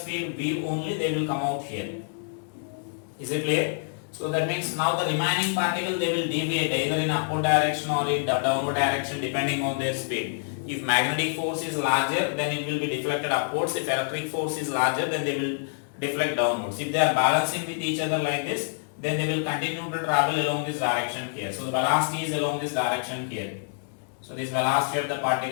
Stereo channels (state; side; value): silent; right; digital silence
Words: V only, they will come out here. Is it clear? So that means now the remaining particle, they will deviate either in upward direction or in downward direction depending on their speed. If magnetic force is larger, then it will be deflected upwards. If electric force is larger, then they will deflect downwards. If they are balancing with each other like this, then they will continue to travel along this direction here. So the velocity is along this direction here. So this velocity of the